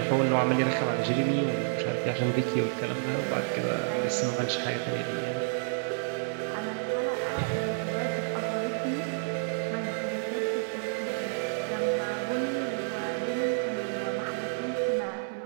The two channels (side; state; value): left; silent; digital silence